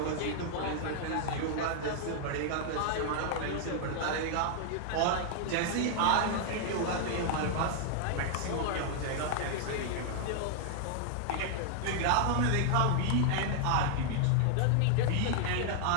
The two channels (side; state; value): both; different; correlation 0.00